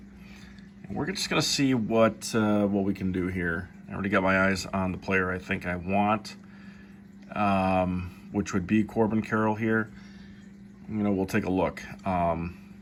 And we're just going to see what we can do here. I already got my eyes on the player I think I want, which would be Corbin Carroll here. We'll take a look.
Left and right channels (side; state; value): both; identical; correlation 1.00